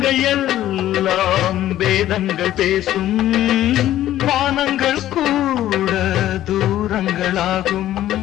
எல்லாம் வேதங்கள் பேசும் வானங்கள் கூட தூரங்களாகும்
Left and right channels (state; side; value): quieter; right; 13.2 dB